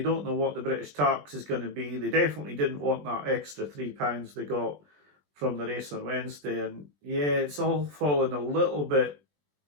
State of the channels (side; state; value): left; late; 20 ms